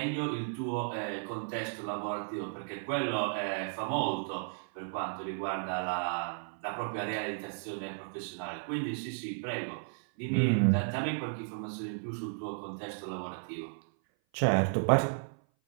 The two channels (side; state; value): left; silent; 55 dB below the other